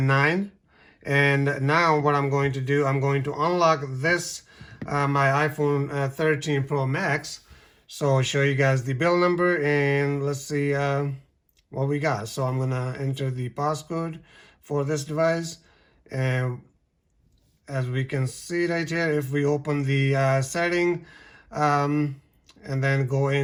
And now what I'm going to do, I'm going to unlock this my iPhone 13 Pro Max. So I'll show you guys the build number, and let's see what we got. So I'm gonna enter the passcode for this device, and as we can see right here, if we open the setting and then go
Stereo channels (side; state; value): both; identical; correlation 1.00